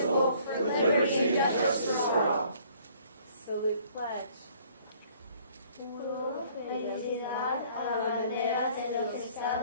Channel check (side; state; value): both; inverted; correlation -0.58